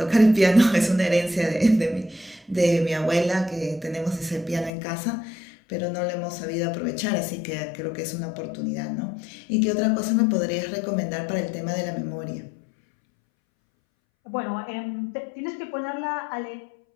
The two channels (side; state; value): right; drops out; at 4.7 s